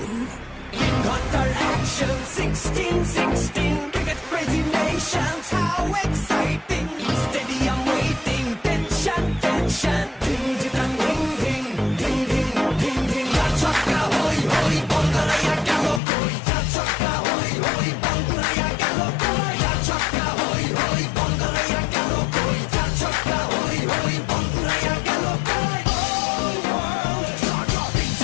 Qatar action 16-16 cricket crazy nations, how exciting! Stadium waiting, tension, tension. Ding ding ding ding ding ding ding ding. Chaka hoy hoy, Bongalaya galo koi. Chaka hoy hoy, Bongalaya galo koi. Chaka hoy hoy, Bongalaya galo koi. Chaka hoy hoy, Bongalaya galo koi. All world, jaw dropping,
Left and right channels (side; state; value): right; drops out; at 16.0 s